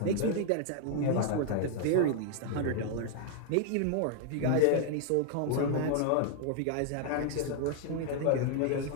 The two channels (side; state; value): both; different; correlation 0.00